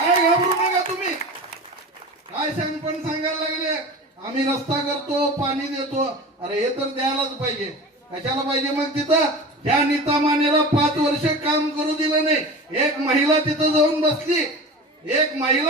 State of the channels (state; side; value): normal; both; correlation 0.33